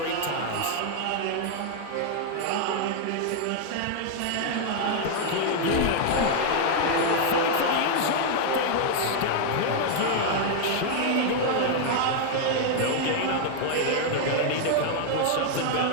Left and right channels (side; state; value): both; different; correlation 0.00